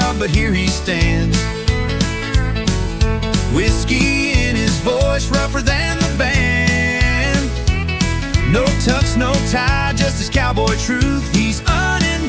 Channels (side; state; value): both; identical; correlation 1.00